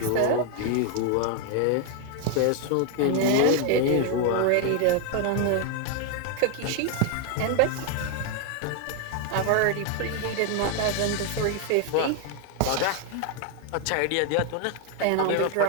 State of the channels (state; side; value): different; both; correlation 0.01